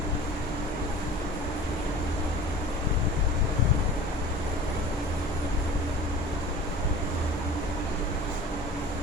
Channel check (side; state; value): both; normal; correlation 0.41